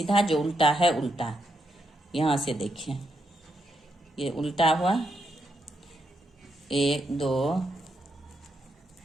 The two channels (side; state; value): both; normal; correlation 0.80